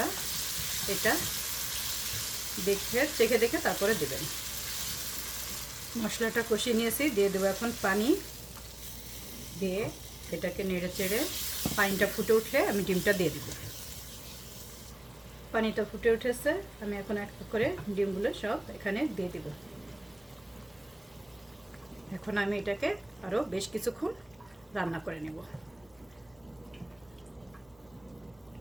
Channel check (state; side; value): noise; left; hum, 29 dB below the sound